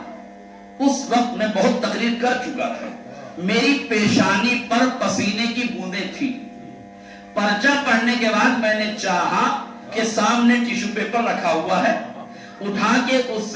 اس وقت میں بہت تقریر کر چکا تھا، میری پیشانی پر پسینے کی بوندیں تھی، پرچہ پڑھنے کے بعد میں نے چاہا کہ سامنے ٹیشو پیپر رکھا ہوا ہے، اٹھا کے اس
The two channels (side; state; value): both; identical; correlation 1.00